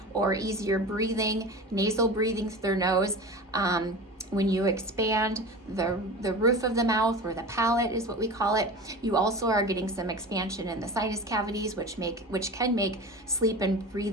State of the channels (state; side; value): normal; both; correlation 0.32